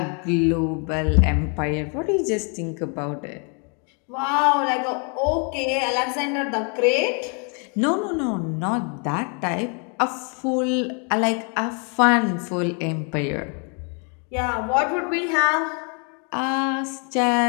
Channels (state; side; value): quieter; right; 37.8 dB